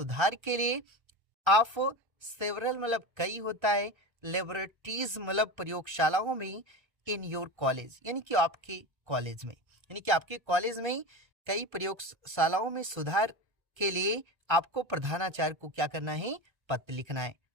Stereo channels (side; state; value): left; late; 1.3 ms